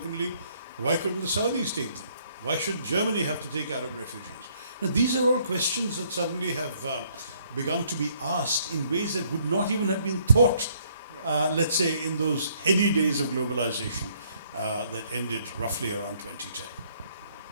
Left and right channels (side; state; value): both; inverted; correlation -0.66